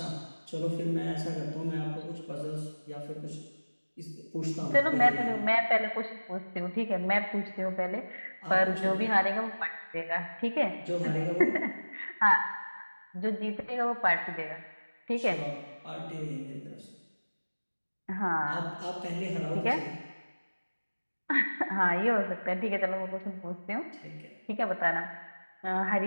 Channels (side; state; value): both; inverted; correlation -1.00